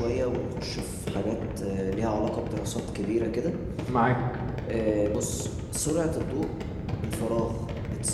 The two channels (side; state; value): both; identical; correlation 1.00